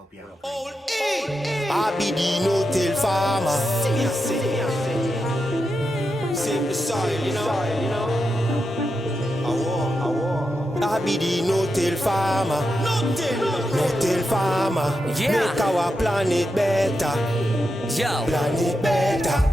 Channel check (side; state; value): both; normal; correlation 0.87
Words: you have a great day. I be the no-till farmer. Save the soil, you know. I be the no-till farmer. No-till farmer. Yeah. Make our planet better. Yo, Planet